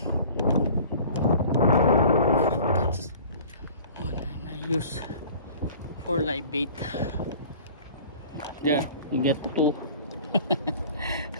Use for live bait. There, you get two.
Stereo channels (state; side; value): inverted; both; correlation -0.45